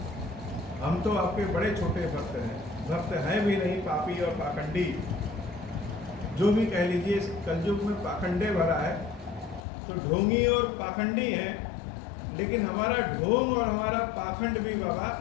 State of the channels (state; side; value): drops out; right; at 9.6 s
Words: हम तो आपके बड़े छोटे भक्त हैं, भक्त हैं भी नहीं, पापी और पाखंडी, जो भी कह लीजिए। इस कलयुग में पाखंडे भरा है, तो ढोंगी और पाखंडी हैं, लेकिन हमारा ढोंग और हमारा पाखंड भी बाबा